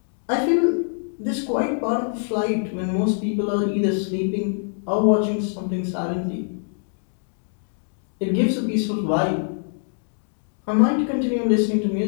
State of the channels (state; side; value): silent; right; digital silence